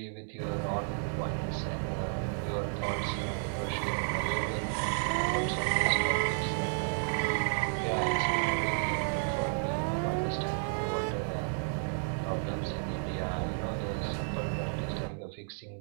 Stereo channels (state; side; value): silent; left; 56 dB below the other